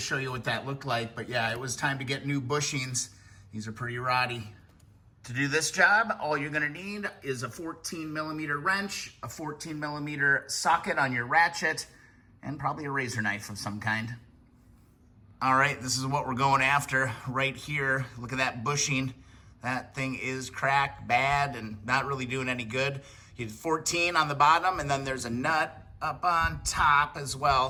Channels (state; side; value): identical; both; correlation 1.00